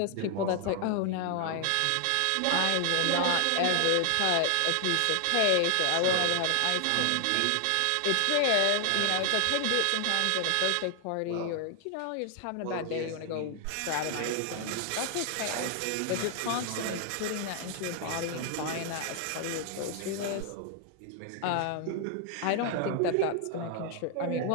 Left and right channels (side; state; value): both; different; correlation 0.00